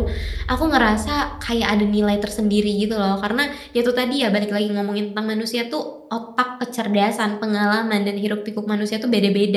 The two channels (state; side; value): identical; both; correlation 1.00